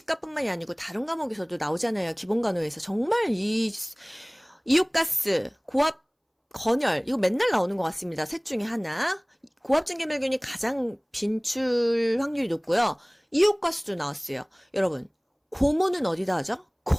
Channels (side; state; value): both; identical; correlation 1.00